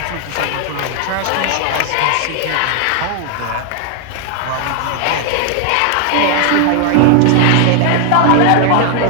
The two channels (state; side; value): different; both; correlation 0.00